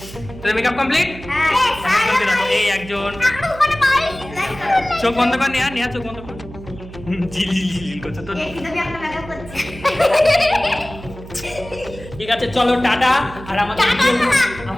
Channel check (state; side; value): noise; right; hum, 15 dB below the sound